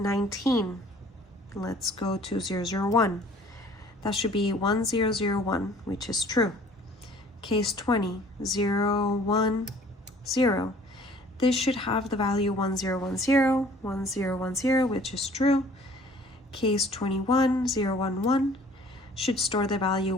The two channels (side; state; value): both; normal; correlation 0.53